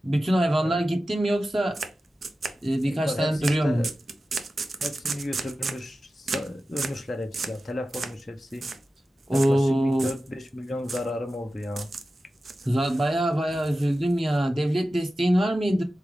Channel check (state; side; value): normal; both; correlation 0.94